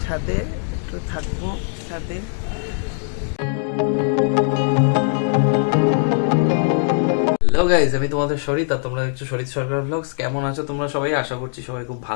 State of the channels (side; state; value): right; silent; 65 dB below the other